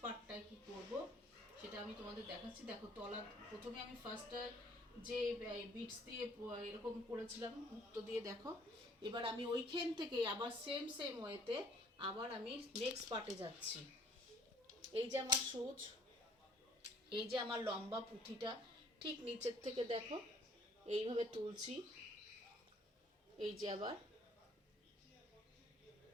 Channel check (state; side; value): normal; both; correlation 0.58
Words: পার্টটায় কী করব সেটা আমি তোমাদের দেখাচ্ছি। দেখো তলা, প্রথমে আমি ফার্স্টটা যে বিটস দিয়ে এরকম করেছিলাম মুক্তো দিয়ে, দেখো এবার আমি ওইখান থেকে আবার সেম ওয়েতে আবার আমি নেক্সট পার্টে যাচ্ছি। এই যে আমার সুচ, এই যে আমার লম্বা পুঁথিটা, ঠিক নিচের থেকে দেখো এইভাবে তুলছি। এই যে আবার